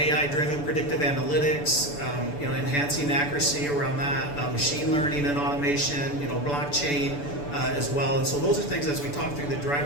predictive analytics, enhancing accuracy around that, machine learning and automation, blockchain as well. And so those are things as we talk through the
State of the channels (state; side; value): late; right; 6.9 ms